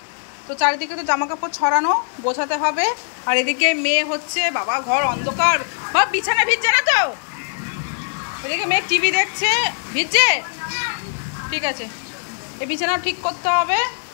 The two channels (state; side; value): silent; right; digital silence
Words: তো চারিদিকে তো জামা কাপড় ছড়ানো, গোছাতে হবে। আর এদিকে মেয়ে হচ্ছে, বাবা ঘর অন্ধকার, বা বিছানা ভিজছে না তো? এদিকে মেয়ে টিভি দেখছে, ভিজছে, ঠিক আছে, এই বিছানাও ঠিক করতে হবে।